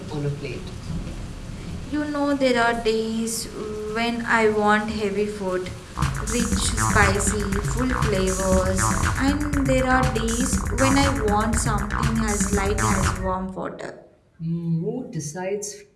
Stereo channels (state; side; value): identical; both; correlation 1.00